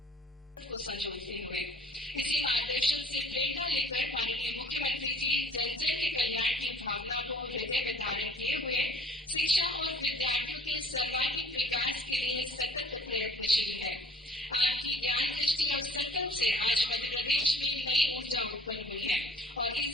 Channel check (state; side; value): normal; both; correlation 0.52